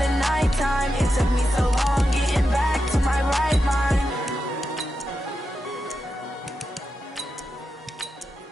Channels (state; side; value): normal; both; correlation 0.88